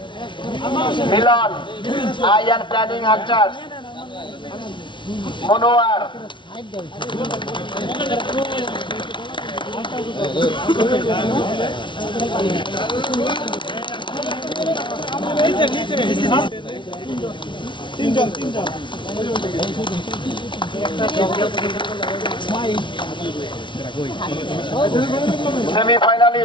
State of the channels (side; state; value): right; late; 0.24 ms